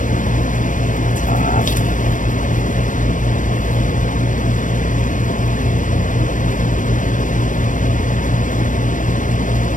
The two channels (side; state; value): right; late; 0.38 ms